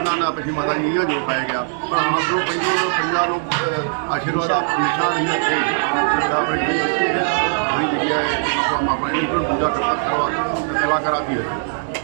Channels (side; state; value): left; silent; 61 dB below the other